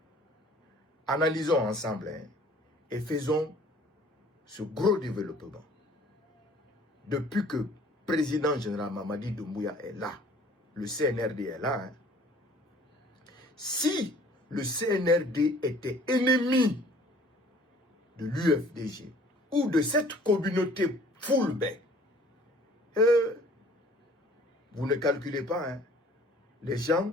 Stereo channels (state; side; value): normal; both; correlation 0.53